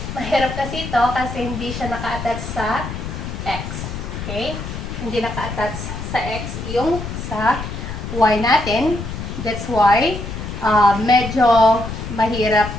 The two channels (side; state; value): left; noise; rumble, 7 dB below the sound